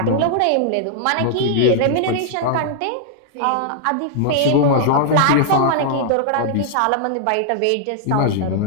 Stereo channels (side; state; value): both; different; correlation -0.01